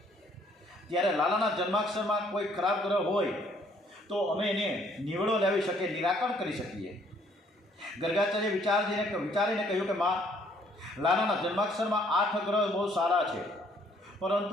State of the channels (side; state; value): both; normal; correlation 0.64